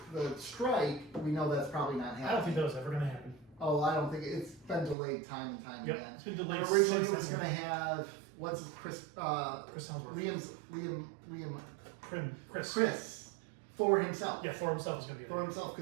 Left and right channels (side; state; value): left; drops out; at 5.0 s